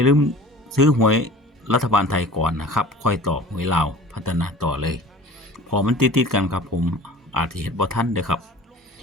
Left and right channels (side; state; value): both; normal; correlation 0.43